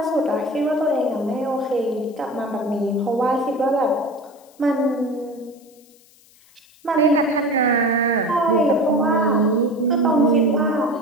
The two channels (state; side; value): noise; left; hiss, 29 dB below the sound